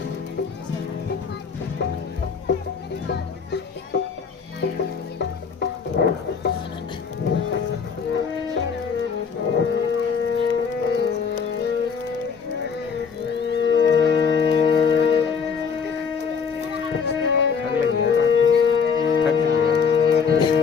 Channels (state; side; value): quieter; right; 6.0 dB